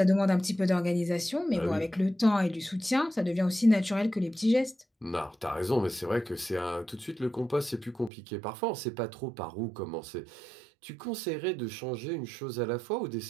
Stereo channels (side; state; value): left; drops out; at 8.1 s